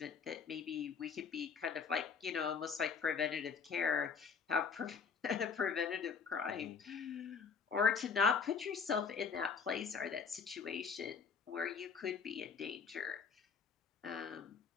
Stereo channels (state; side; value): quieter; right; 5.9 dB